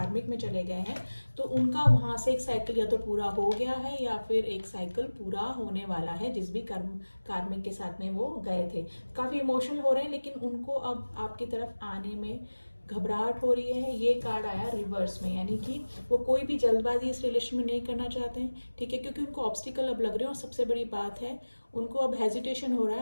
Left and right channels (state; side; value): inverted; both; correlation -1.00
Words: में चले गए हैं, तो उनका वहां से एक साइकिल या तो पूरा हो गया है या फिर एक साइकिल पूरा होने वाला है जिस भी कार्मिक के साथ में वो गए थे। काफी इमोशनल हो रहे हैं, लेकिन उनको अब आपकी तरफ आने में घबराहट हो रही है। ये कार्ड आया रिवर्स में, यानी कि वो कोई भी जल्दबाजी इस रिलेशन में नहीं करना चाहते हैं। ठीक है, क्योंकि उनको ऑब्स्टिकल अब लग रहे हैं, और सबसे बड़ी बात है उनको अब हेजिटेशन हो रहा